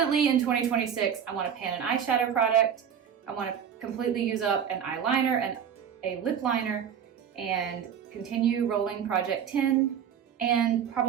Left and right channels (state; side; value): quieter; left; 8.3 dB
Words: in 2026, I want to pan an eyeshadow product. I want to completely use up an eyeliner and a lip liner and continue rolling Project 10, and